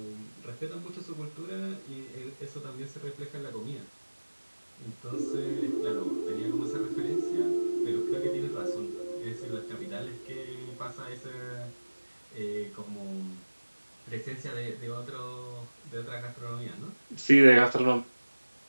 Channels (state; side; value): inverted; both; correlation -1.00